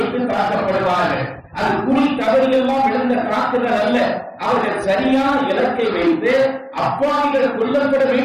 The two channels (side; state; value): both; identical; correlation 1.00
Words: தாக்கப்படுவார்கள். அது குறி தவறியெல்லாம் விழுந்த தாக்குதல் அல்ல. அவர்கள் சரியான இலக்கை வைத்து அப்பாவிகள் கொல்லப்பட